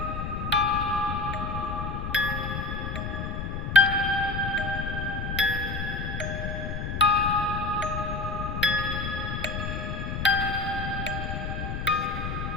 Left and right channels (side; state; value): left; noise; rumble, 4 dB below the sound